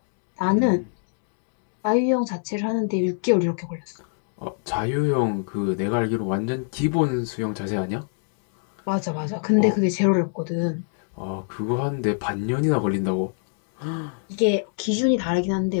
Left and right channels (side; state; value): right; silent; 62 dB below the other